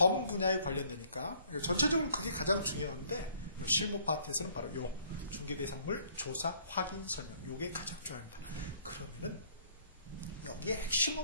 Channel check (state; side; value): inverted; both; correlation -0.61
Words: 분야에 관련되니까 전체적으로 그게 가장 중요한데 실무 파트에서는 바로 요 중개대상물 조사, 확인, 설명 요게 가장 중요합니다. 그러면은 여기에